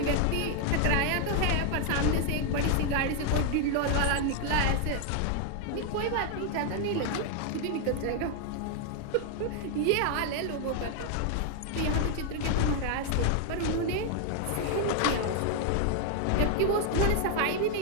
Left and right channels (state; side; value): different; both; correlation 0.00